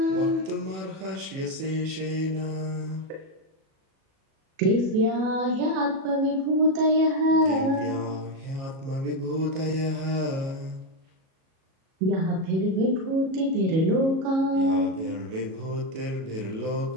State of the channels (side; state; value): left; late; 37 ms